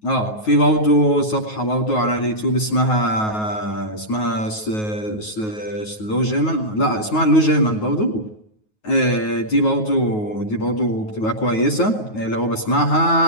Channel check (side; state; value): right; late; 9.4 ms